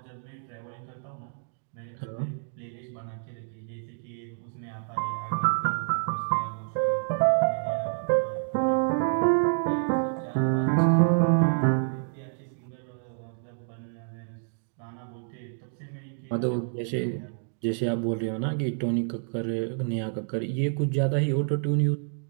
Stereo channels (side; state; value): left; silent; digital silence